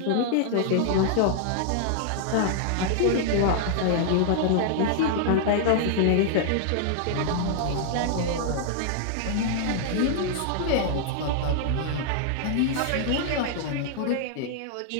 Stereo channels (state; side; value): different; both; correlation -0.01